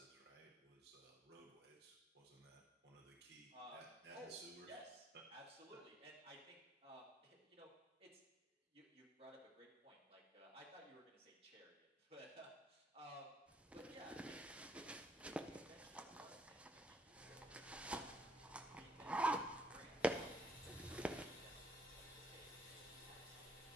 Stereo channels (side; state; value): both; normal; correlation 0.69